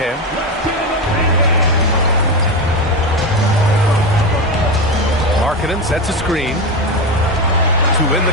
Markkanen sets a screen to win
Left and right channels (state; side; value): normal; both; correlation 0.16